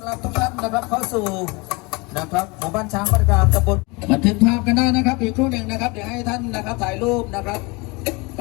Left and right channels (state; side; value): quieter; right; 26.7 dB